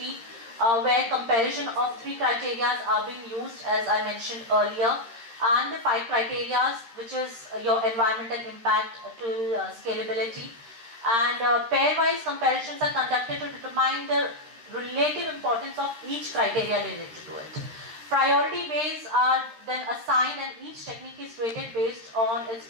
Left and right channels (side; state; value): left; late; 13 ms